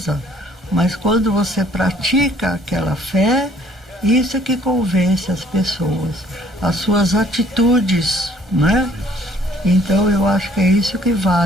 mas quando você pratica aquela fé, isso é que convence as pessoas, as suas atitudes, né? Então eu acho que é isso que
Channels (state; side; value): normal; both; correlation 0.60